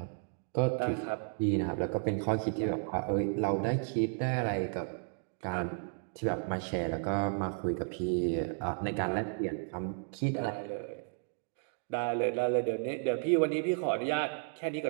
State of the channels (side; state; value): left; silent; 56 dB below the other